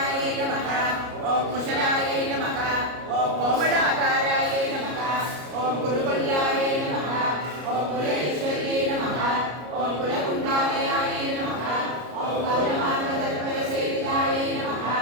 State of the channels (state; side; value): late; left; 33 ms